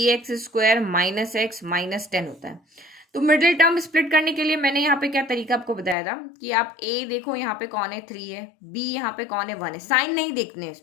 - x - 10 होता है। तो मिडिल टर्म स्प्लिट करने के लिए मैंने यहाँ पे क्या तरीका आपको बताया था, कि आप a देखो यहाँ पे कौन है, 3 है, b यहाँ पे कौन है, 1 है, साइन नहीं देखने हैं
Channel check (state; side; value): drops out; right; at 6.0 s